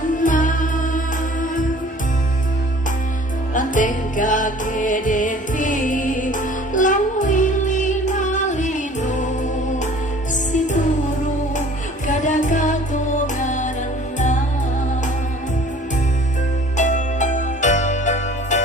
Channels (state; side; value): normal; both; correlation 0.49